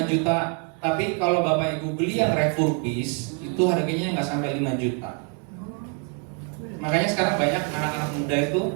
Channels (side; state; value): left; quieter; 39.3 dB